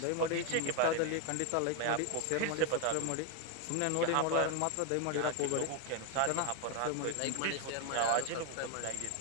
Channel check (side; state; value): both; different; correlation 0.01